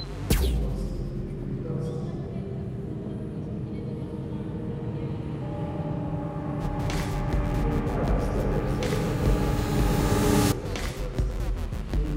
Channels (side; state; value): both; identical; correlation 1.00